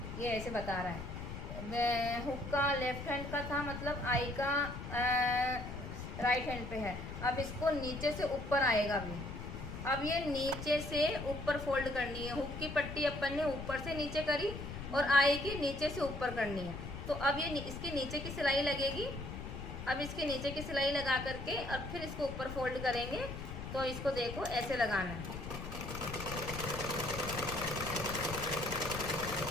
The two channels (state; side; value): noise; left; rumble, 8 dB below the sound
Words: ये ऐसे बता रहा है, हुक का लेफ्ट हैंड का था, मतलब आई का राइट हैंड पे है। अब इसको नीचे से ऊपर आएगा भी। अब ये नीचे से ऊपर फोल्ड करनी है। हुक की पट्टी अपन ने ऊपर से नीचे करी और आई की नीचे से ऊपर करनी है। तो अब ये इसके नीचे की सिलाई लगेगी। अब इसके नीचे की सिलाई लगा करके और फिर इसको ऊपर फोल्ड करेंगे। तो इसको देखो ऐसे लगाना है,